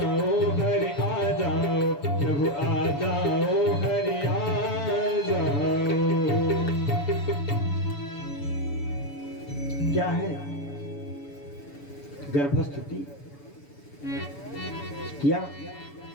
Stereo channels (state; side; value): late; right; 7.0 ms